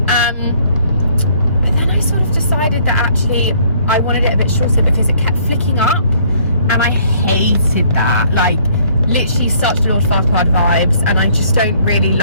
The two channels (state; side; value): inverted; both; correlation -0.61